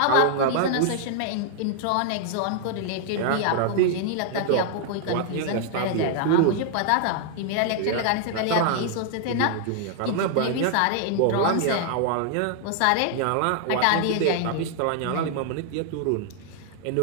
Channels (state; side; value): different; both; correlation 0.00